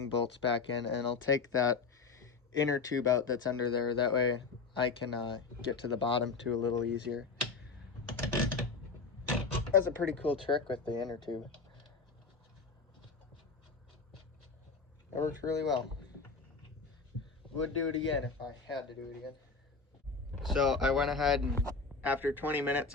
bolts back in, and I'll take that inner tube out that's under there. That way I can get to the bottom too a little easier. That's a pretty cool trick with the inner tube. It works really well. Would do it again if I had to do it again. So I went ahead and after 20 minutes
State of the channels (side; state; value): right; quieter; 4.6 dB